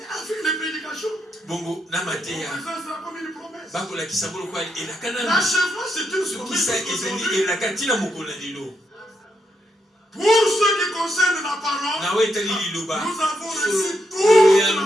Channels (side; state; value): both; normal; correlation 0.81